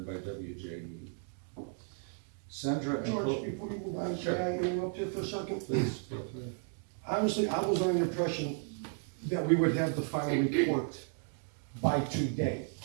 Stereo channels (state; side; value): silent; left; 55 dB below the other